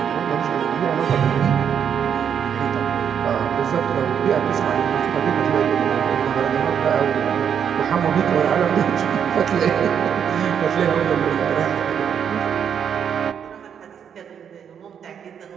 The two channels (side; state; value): left; quieter; 8.0 dB